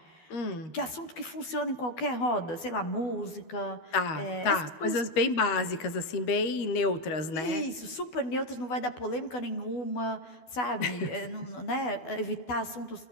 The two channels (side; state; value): right; late; 12 ms